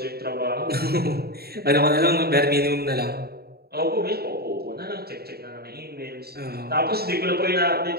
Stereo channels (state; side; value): late; left; 0.46 ms